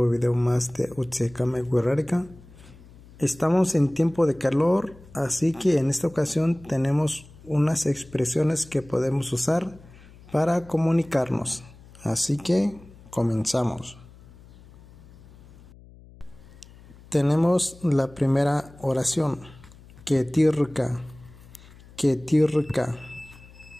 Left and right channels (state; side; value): noise; left; hum, 22 dB below the sound